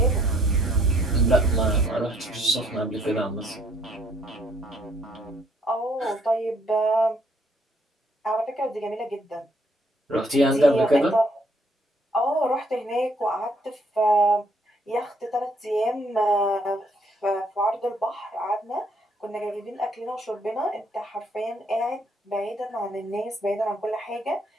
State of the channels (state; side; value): normal; both; correlation 0.67